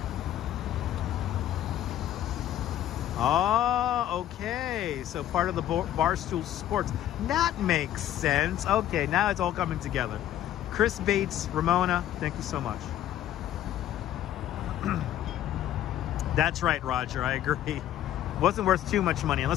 Oh, okay. So part of the Barstool Sports. That makes sense. Okay, now it's all coming together. Chris Bates, Ramona, thank you so much. That's right, Roger. I agree. Wasn't worth too much money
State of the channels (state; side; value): quieter; right; 12.1 dB